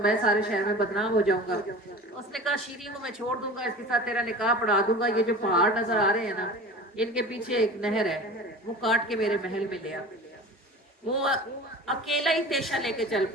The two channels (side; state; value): both; normal; correlation 0.37